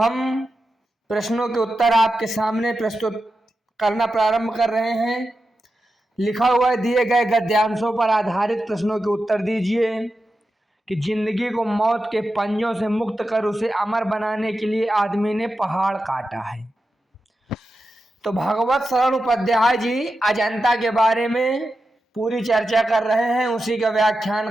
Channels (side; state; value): both; normal; correlation 0.90